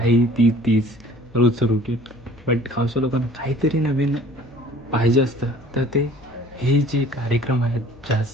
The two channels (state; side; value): noise; left; hum, 26 dB below the sound